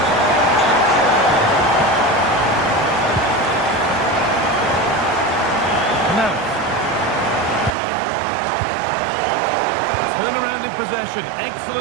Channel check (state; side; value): drops out; left; at 7.7 s